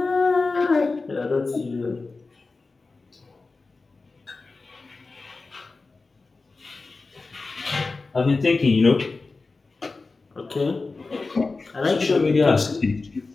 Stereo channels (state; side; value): quieter; right; 3.8 dB